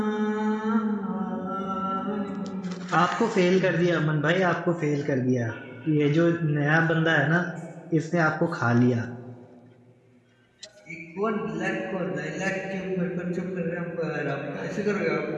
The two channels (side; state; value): both; identical; correlation 1.00